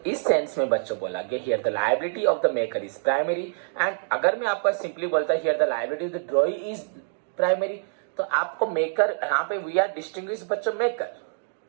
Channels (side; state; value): left; silent; digital silence